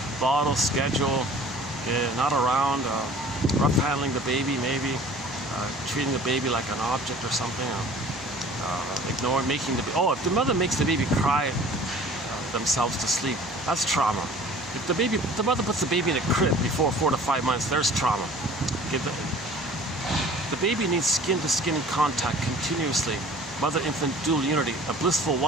bottle, schedule, not around, rough handling the baby maybe, treating the baby like an object or something, ignoring, making the baby. Oh, if the mother makes the baby cry themselves to sleep, that's trauma. If the mother puts the baby in a crib before 4 to 5 months, there's trauma. The baby needs skin-to-skin contact continuously. Mother-infant dual unity, a blissful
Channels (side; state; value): both; normal; correlation 0.47